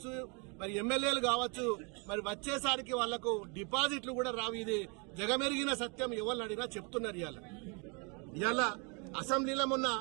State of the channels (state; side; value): quieter; left; 33.5 dB